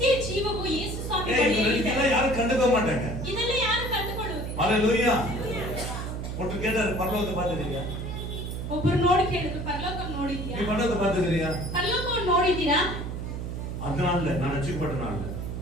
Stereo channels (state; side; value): noise; right; hum, 5 dB below the sound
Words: ಜೀವವು ಯೇಸು ಸ್ವಾಮಿ இதெல்லாம் யாரும் கண்டுக்க மாட்டாங்க. ಇದೆಲ್ಲ ಯಾರು ಕಂಡುಕೊಳ್ಳುವುದಿಲ್ಲ. ஹalleluya. ஒருத்தர் கேட்டாரு, பரலோகத்தை பார்த்துட்டீங்க? ಒಬ್ಬರು ನೋಡಿ ಕೇಳಿದ್ರು, ಪರಲೋಕ ನೋಡಿದ್ಯಾ? நீ பரலோகத்தை பார்த்துக்கிறியா? ಪರಲೋಕವನ್ನು ನೋಡಿದ್ದೀರಾ? அதனால நான் ரட்சிக்கப்பட்டனால.